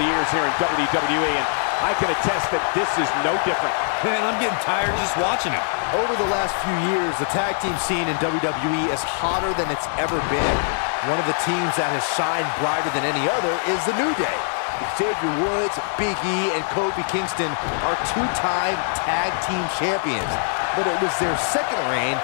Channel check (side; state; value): right; silent; 64 dB below the other